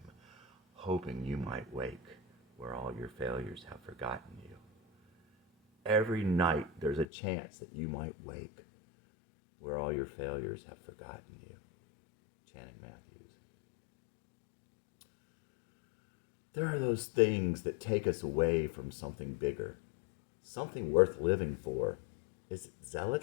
hoping you might wake where all your failures have forgotten you. Every night there's a chance that you might wake where all your failures have forgotten you. Channing Matthews. There are those things that take us away from something bigger, something worth living for. Is it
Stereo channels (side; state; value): right; drops out; at 7.1 s